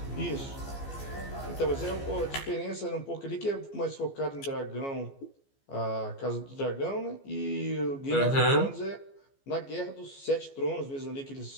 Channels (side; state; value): right; late; 15 ms